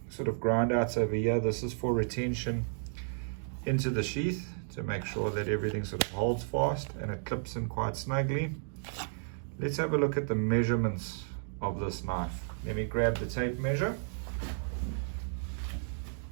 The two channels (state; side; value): silent; left; digital silence